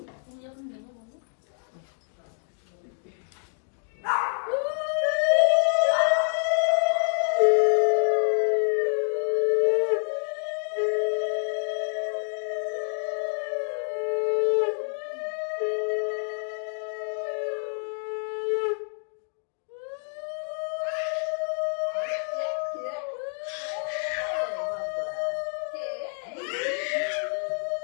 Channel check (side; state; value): right; silent; 60 dB below the other